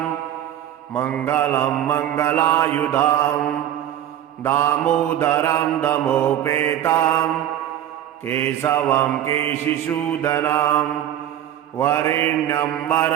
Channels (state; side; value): quieter; left; 11.4 dB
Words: मङ्गलं मङ्गलायुधं दामोदरं दमोपेतं केशवं केशिसूदनं वरेण्यं